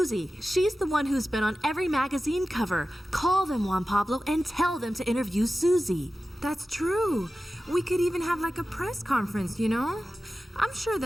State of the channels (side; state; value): both; normal; correlation 0.94